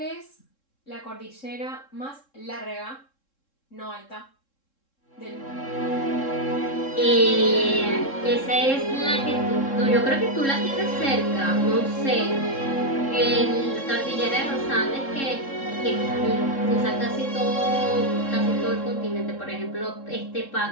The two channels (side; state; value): right; late; 3.7 ms